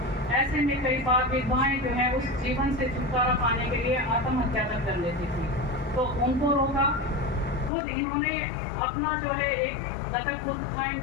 ऐसे में कई बार विधवाएं जो है उस जीवन से छुटकारा पाने के लिए आत्महत्या तक कर लेती थी, तो उनको रोका। खुद इन्होंने अपना जो है एक दत्तक पुत्र था,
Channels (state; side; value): drops out; right; at 7.7 s